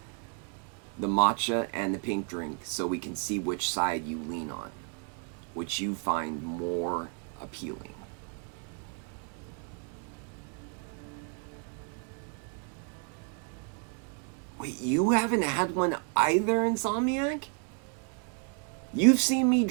the matcha and the pink drink so we can see which side you lean on, which you find more appealing. Wait, you haven't had one either, Insomniac? You've seen me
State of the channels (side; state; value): left; quieter; 39.3 dB